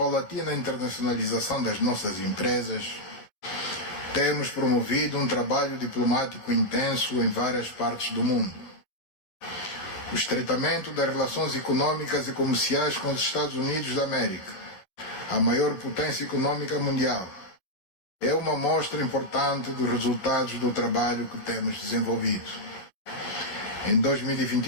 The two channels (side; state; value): right; late; 11 ms